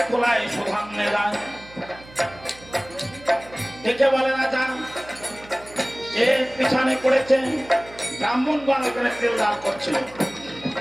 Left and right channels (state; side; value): noise; right; hum, 21 dB below the sound